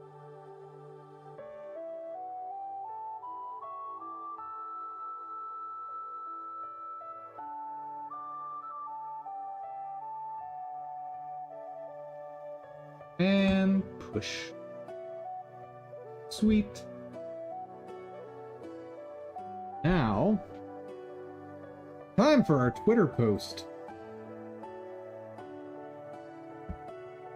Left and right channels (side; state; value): both; identical; correlation 1.00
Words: And push. Sweet. Now, time for our Twitter post.